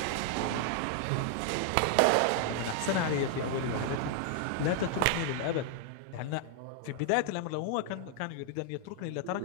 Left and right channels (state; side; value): different; both; correlation 0.00